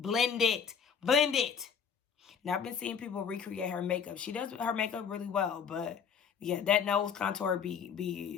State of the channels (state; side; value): quieter; right; 6.9 dB